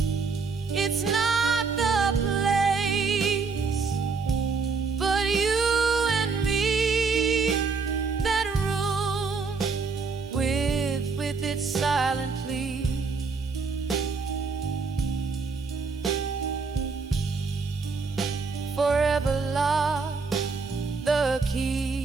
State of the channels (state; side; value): quieter; left; 4.7 dB